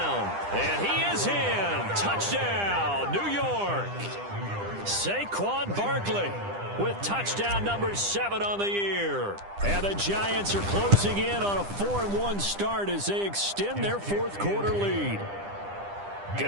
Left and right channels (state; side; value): late; left; 10 ms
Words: And he is in. Touchdown, New York. Saquon Barkley with touchdown number 7 on the year. And the Giants are closing in on a 4-1 start as they extend their 4th quarter lead.